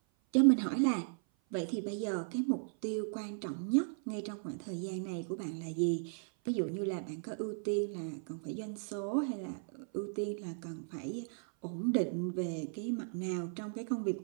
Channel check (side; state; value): left; silent; 54 dB below the other